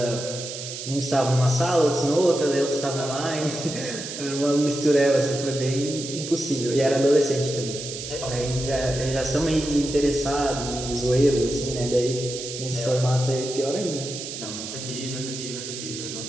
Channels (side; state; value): right; noise; hiss, 8 dB below the sound